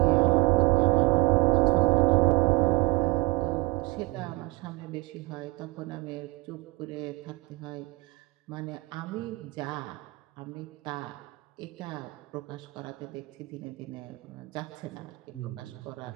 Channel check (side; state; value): left; quieter; 23.7 dB